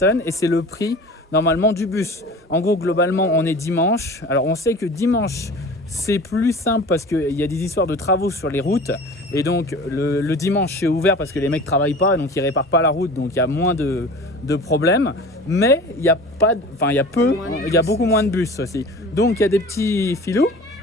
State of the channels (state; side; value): normal; both; correlation 0.40